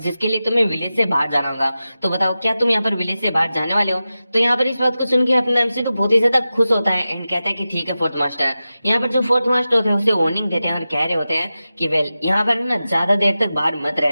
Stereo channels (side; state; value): both; inverted; correlation -0.94